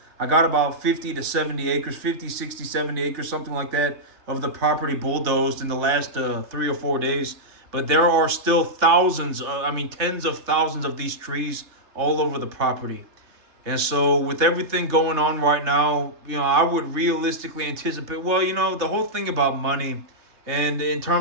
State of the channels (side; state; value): left; late; 3.3 ms